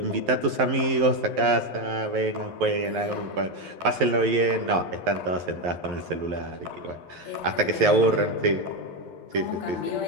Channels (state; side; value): late; left; 11 ms